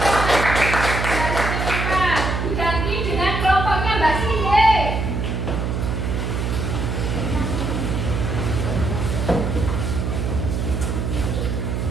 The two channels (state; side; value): noise; right; hum, 1 dB below the sound